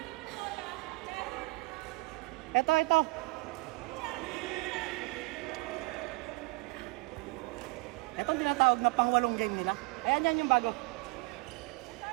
ito. Itong tinatawag na pang-walong game nila. Ayan, yan yung bago.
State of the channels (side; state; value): left; quieter; 24.7 dB